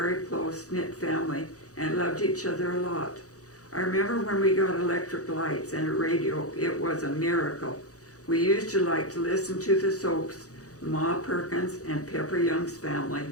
close-knit family and loved each other a lot. I remember when we got electric lights and a radio, it was a miracle. We used to like to listen to the soaps, Ma Perkins and Pepper Young's Family.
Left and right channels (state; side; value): late; right; 0.66 ms